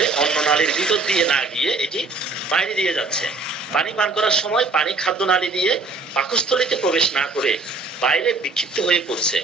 অন্য নালীর ভিতর দিয়ে না গিয়ে এটি বাইরে দিয়ে যাচ্ছে। পানি পান করার সময় পানি খাদ্য নালী দিয়ে পাকস্থলীতে প্রবেশ না করে বাইরে বিক্ষিপ্ত হয়ে পড়ছে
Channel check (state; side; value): quieter; left; 3.7 dB